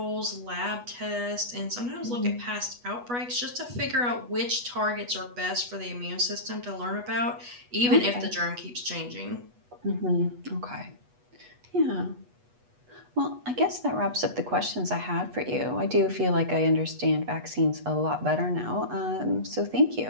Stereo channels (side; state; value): left; late; 8.2 ms